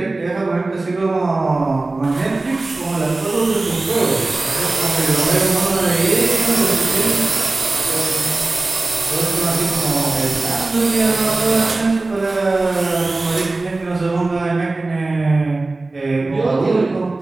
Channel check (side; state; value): left; quieter; 3.2 dB